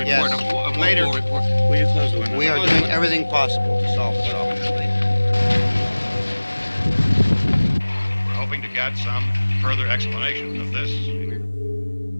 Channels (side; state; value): both; inverted; correlation -1.00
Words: Yes. A Later. report. Will you close the window? We are doing everything possible to solve the problem. We're hoping to get some further explanation of this